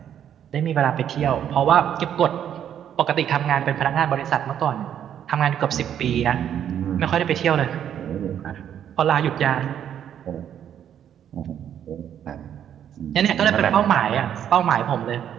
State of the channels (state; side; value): quieter; left; 9.6 dB